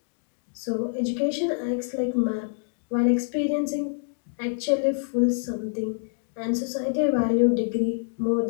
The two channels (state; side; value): silent; right; digital silence